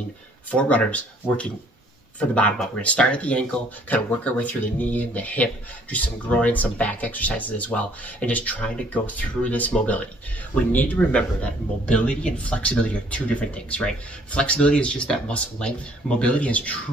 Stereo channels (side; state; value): both; normal; correlation 0.60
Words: for runners working from the bottom up. We're gonna start at the ankle, kind of work our way through the knee and the hip, do some groin, some back exercises as well, and just trying to go through this mobility. We need to remember that mobility and flexibility are two different things, right? Flexibility is just that muscle length. Mobility is